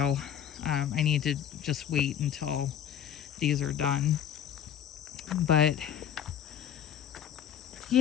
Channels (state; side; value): quieter; right; 9.4 dB